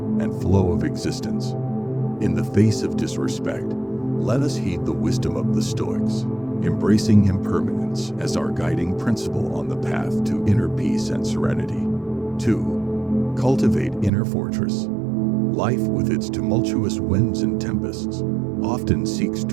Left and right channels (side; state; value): left; drops out; at 14.1 s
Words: and flow of existence. In the face of disrespect, let us heed the wisdom of the Stoics, embracing impermanence as our guiding principle on the path to inner peace and serenity. 2. Cultivate inner fortress. Life, with its tumultuous winds and tempests, often seeks